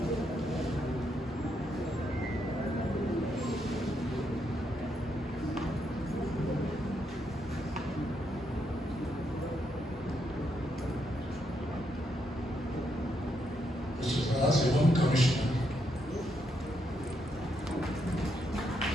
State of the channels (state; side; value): normal; both; correlation 0.79